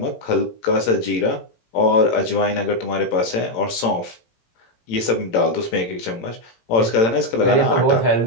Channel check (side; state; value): right; late; 18 ms